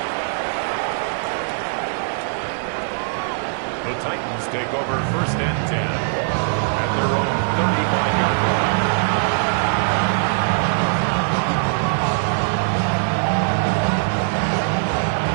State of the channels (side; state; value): left; silent; 57 dB below the other